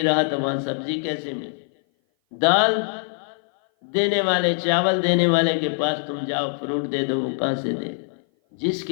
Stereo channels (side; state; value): right; silent; 57 dB below the other